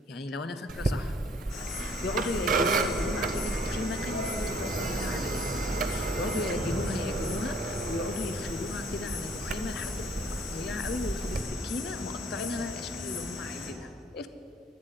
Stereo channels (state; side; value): normal; both; correlation 0.59